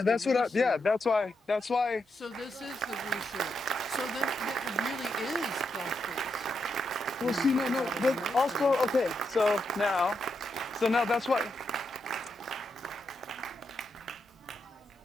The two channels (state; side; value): normal; both; correlation 0.83